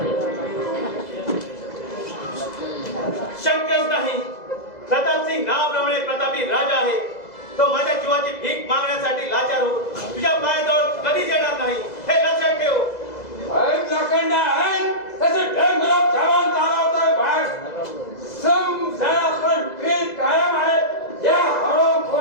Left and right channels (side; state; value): right; late; 2.0 ms